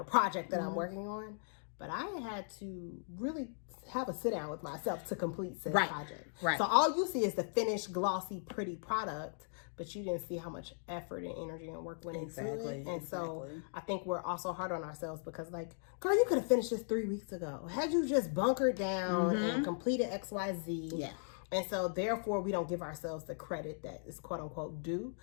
project that I'm working on, but I had to really have a sit down with myself to complete said project. Right. So all you see is the finished, glossy, pretty product, but you didn't see how much effort and energy and work went into it. And so I think we're also hard on ourselves because, like, girl, you could have finished this 3 weeks ago. Had you just bunkered down and completed X, Y, Z. Yeah. And so therefore we don't give ourselves the credit that is quote unquote due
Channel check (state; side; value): silent; right; digital silence